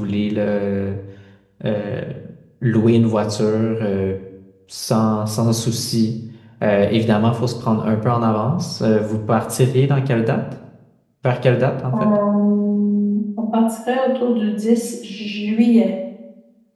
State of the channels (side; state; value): both; identical; correlation 1.00